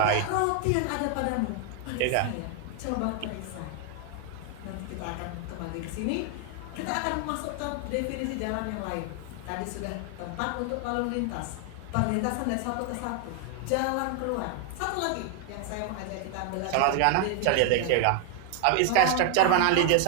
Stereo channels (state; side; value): different; both; correlation 0.00